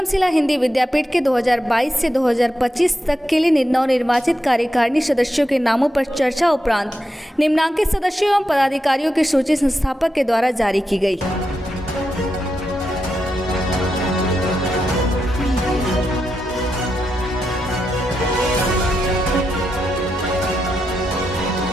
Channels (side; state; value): both; normal; correlation 0.86